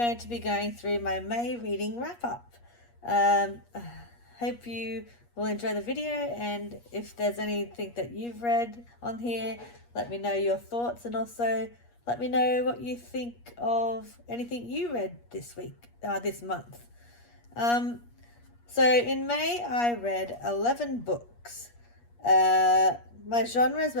to be going through my May reading wrap up. Hope you will enjoy the video, and if there's anything that you've read on here, let me know your thoughts, and also let me know what you think of anything you read this month. So in May I read 11 books. My genres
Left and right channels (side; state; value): right; late; 8.4 ms